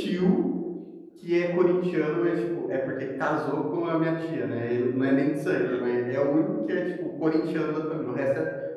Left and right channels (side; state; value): both; identical; correlation 1.00